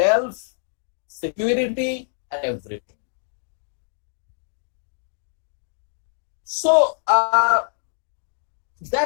security, and everything. So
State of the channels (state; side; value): silent; right; digital silence